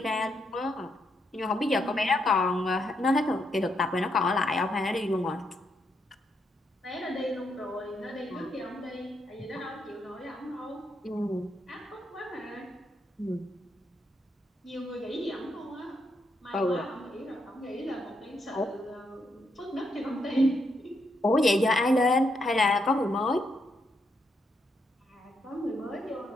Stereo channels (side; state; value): both; normal; correlation 0.79